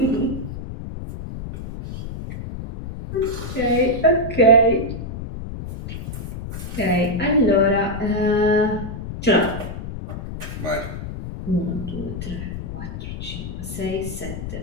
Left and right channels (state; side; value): noise; left; rumble, 8 dB below the sound